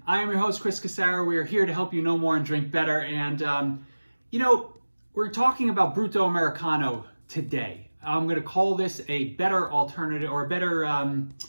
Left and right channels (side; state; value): both; inverted; correlation -1.00